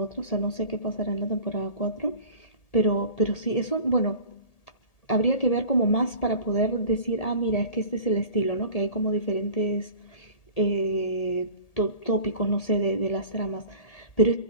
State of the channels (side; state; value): right; late; 1.8 ms